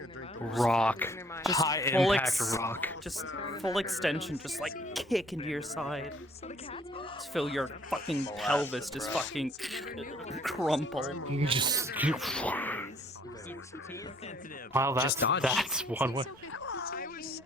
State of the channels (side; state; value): both; normal; correlation 0.60